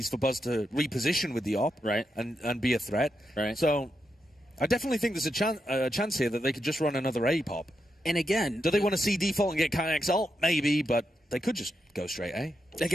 for Buzz to reposition with the op. Right. And be a threat. Right. So I definitely think there's a chance here that they could just run another A pop. And again, do they want to see default and get Kayak's ult? Maybe, but they could just go straight A.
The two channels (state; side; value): normal; both; correlation 0.84